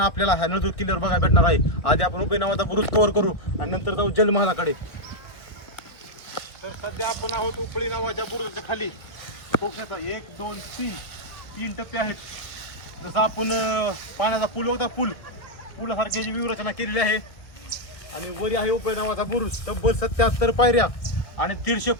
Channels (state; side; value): late; right; 1.8 ms